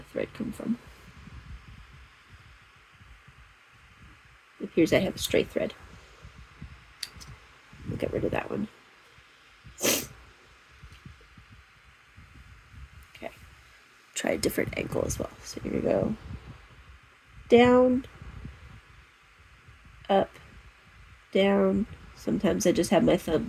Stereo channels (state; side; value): identical; both; correlation 1.00